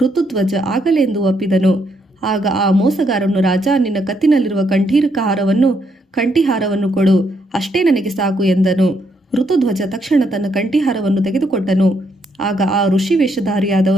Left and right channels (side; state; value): both; normal; correlation 0.75